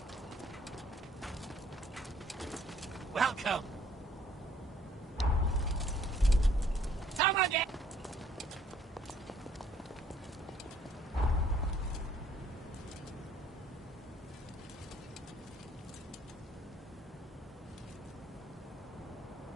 Welcome! Come again!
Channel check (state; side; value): normal; both; correlation 0.62